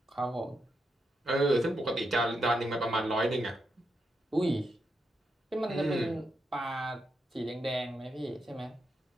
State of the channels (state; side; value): normal; both; correlation 0.83